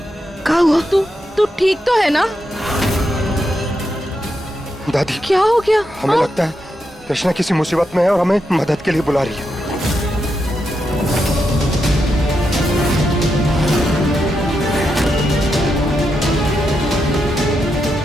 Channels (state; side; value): normal; both; correlation 0.84